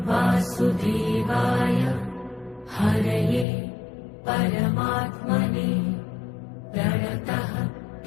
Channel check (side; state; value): right; drops out; at 3.5 s